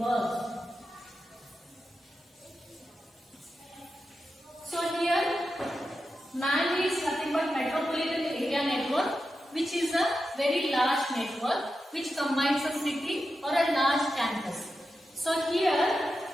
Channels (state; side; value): normal; both; correlation 0.90